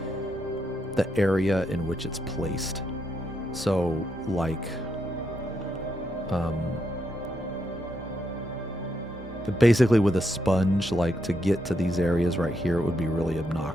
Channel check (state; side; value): normal; both; correlation 0.80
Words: area in which it's placed. So, like, basically with a sponge, like, to get to these areas right here, it would be really